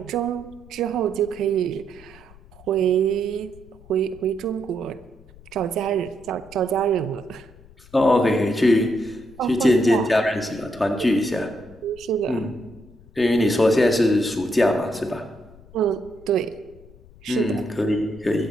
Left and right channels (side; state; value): left; noise; rumble, 23 dB below the sound